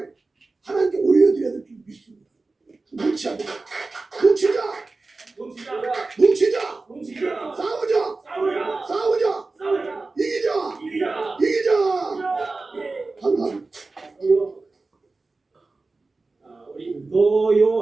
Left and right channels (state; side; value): quieter; left; 3.6 dB